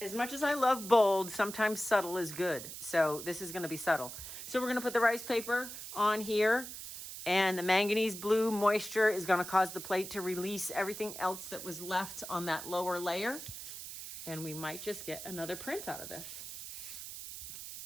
much as I love bold, sometimes subtle is good. So this is going to be subtle. So we're going to put the rice paper on here, and the manganese blue moisture is going to cause the plate to release everything else that was left on that lower layer. And we might just get another print out of this.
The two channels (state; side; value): noise; right; hiss, 10 dB below the sound